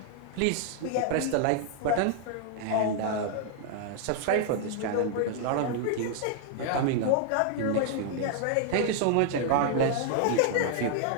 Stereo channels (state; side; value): different; both; correlation -0.01